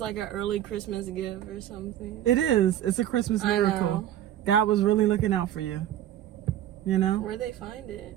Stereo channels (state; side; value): quieter; left; 11.9 dB